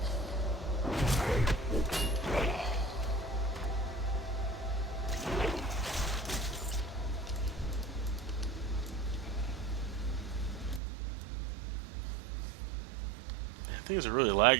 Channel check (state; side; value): drops out; left; at 10.8 s